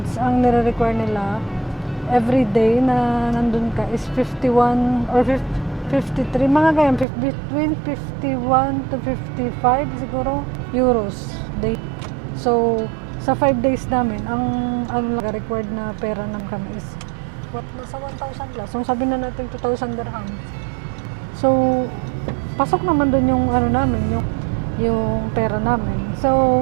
ang nire-require nila every day na nandun ka is 51 or 53, mga ganyan, between 51 to 55 siguro euros day. So sa 5 days namin, ang required na pera namin kami is nasa 1,000 plus. So sabi na natin 2,000 dirhams. So pasok naman doon yung namin, yung pera namin.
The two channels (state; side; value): drops out; left; at 7.1 s